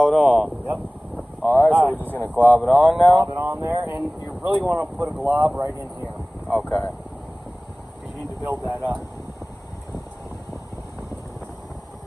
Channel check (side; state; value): both; normal; correlation 0.98